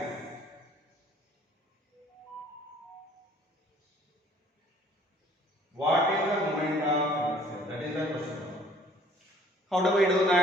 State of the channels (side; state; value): both; normal; correlation 0.56